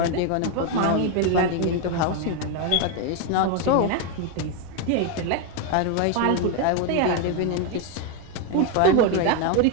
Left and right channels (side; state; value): both; different; correlation 0.01